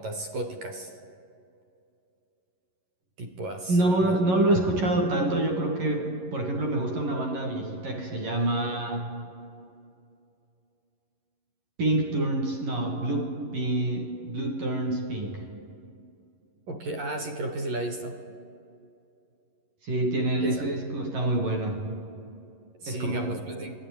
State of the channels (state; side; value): late; left; 11 ms